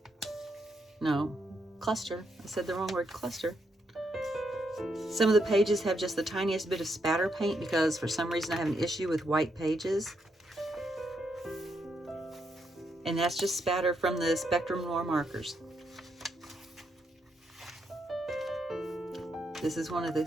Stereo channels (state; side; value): normal; both; correlation 0.79